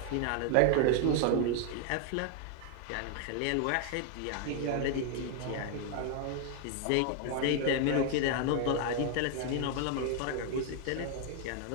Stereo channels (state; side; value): different; both; correlation 0.00